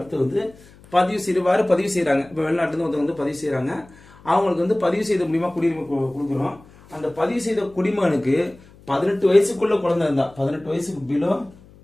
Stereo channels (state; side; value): noise; left; hum, 25 dB below the sound